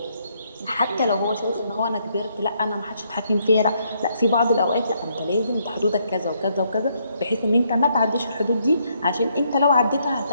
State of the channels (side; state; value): both; inverted; correlation -0.73